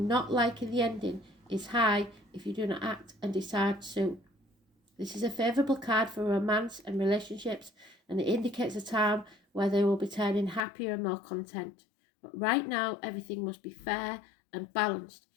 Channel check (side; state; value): right; drops out; at 10.6 s